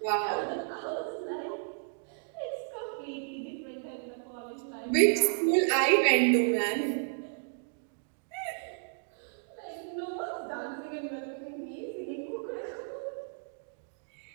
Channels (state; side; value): silent; left; digital silence